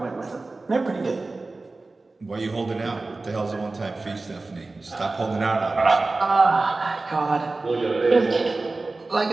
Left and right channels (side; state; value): left; quieter; 3.4 dB